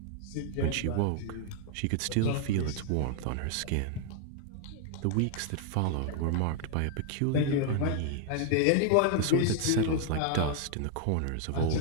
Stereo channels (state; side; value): different; both; correlation 0.00